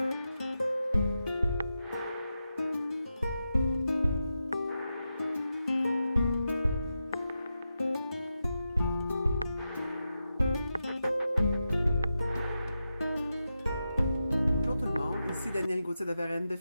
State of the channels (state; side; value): inverted; both; correlation -0.89